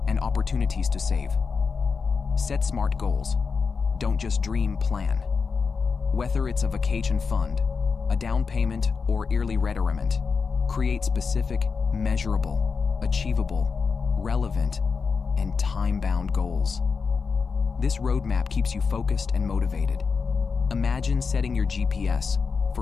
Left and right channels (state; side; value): quieter; right; 5.2 dB